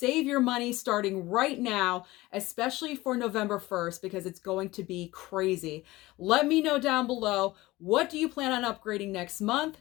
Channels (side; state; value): right; quieter; 19.1 dB